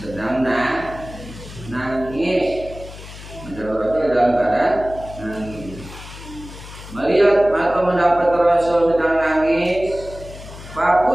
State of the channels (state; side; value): noise; left; hum, 15 dB below the sound